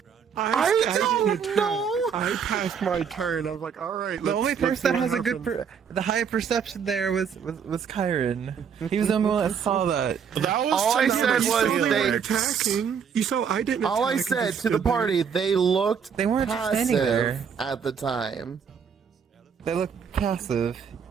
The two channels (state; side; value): quieter; left; 7.0 dB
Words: I didn't don't attack. know. I passed my turn. I was like, all right. The only person that has a good, the high perception there was Kyron. He was the only one that saw that. That was All I said You saw was they they. were attacking. You saw I didn't. All I attack, said just to the stood there. party, they looked They weren't just standing there. passive at the time. They looked passive.